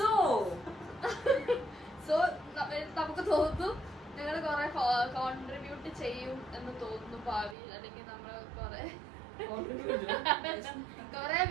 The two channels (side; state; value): left; drops out; at 7.6 s